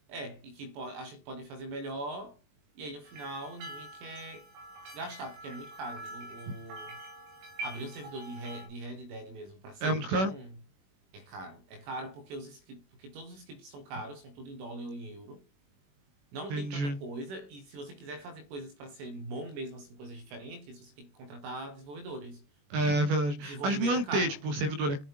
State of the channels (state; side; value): late; left; 21 ms